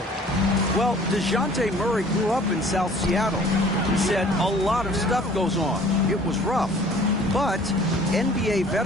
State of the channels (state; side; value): normal; both; correlation 0.52